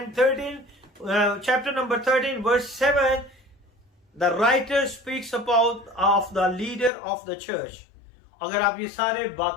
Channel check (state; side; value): drops out; right; at 6.9 s